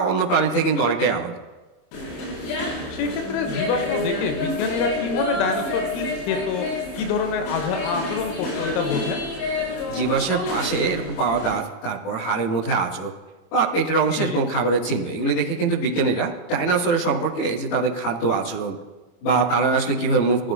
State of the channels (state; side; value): late; right; 26 ms